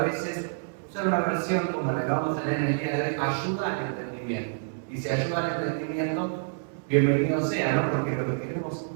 usar una versión como la que vamos a leer en el día de hoy ayuda al entendimiento. Y si ayuda al entendimiento, bienvenido sea, ¿no? Porque lo que queremos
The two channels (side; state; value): left; silent; 60 dB below the other